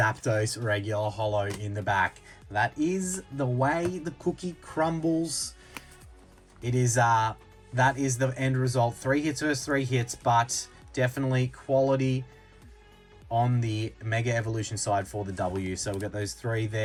regular holo in the back. That is the way the cookie crumbles. It is that is the end result. 3 hits versus 3 hits, but definitely quality on the Mega Evolution side for the W. So we've got those 3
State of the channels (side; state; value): both; identical; correlation 1.00